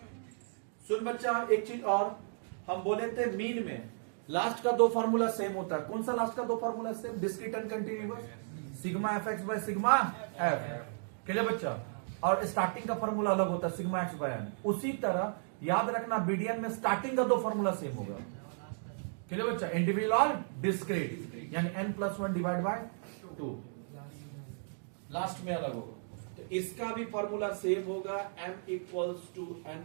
सुन बच्चा, एक चीज और, हम बोले थे मीन में लास्ट का 2 फार्मूला सेम होता है। कौन सा लास्ट का 2 formula same? Discrete and continuous, σfx/σf। Clear बच्चा? और स्टार्टिंग का फार्मूला अलग होता है, σx/n। उसी तरह याद रखना बीडीएन में स्टार्टिंग का 2 फार्मूला सेम होगा। क्लियर बच्चा? इंडिविजुअल और डिस्क्रीट, यानी n+1 डिवाइड बाय 2, लास्ट में अलग होगा। तो इसका भी फॉर्मूला सेम होगा, m =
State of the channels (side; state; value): left; silent; digital silence